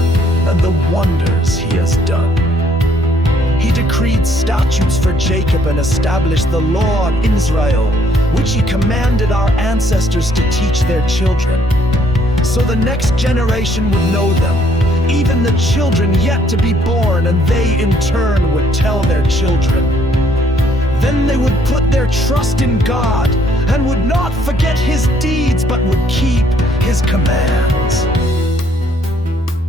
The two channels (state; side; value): normal; both; correlation 0.66